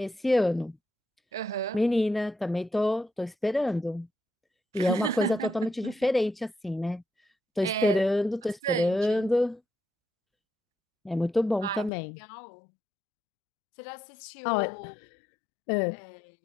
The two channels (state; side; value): drops out; right; at 11.9 s